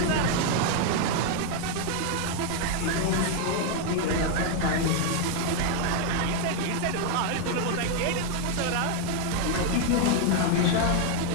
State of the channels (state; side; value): different; both; correlation 0.00